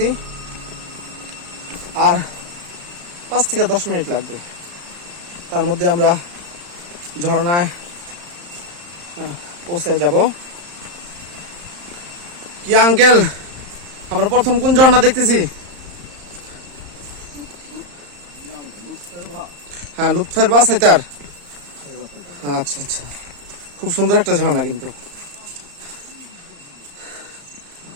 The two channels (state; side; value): late; left; 34 ms